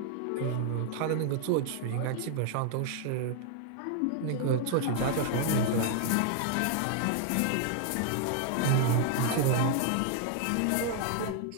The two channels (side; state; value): both; different; correlation 0.00